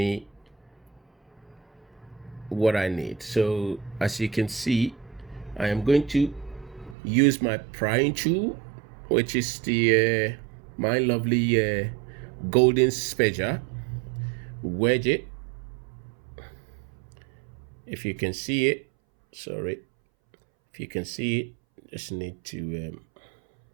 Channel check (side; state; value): left; drops out; at 7.0 s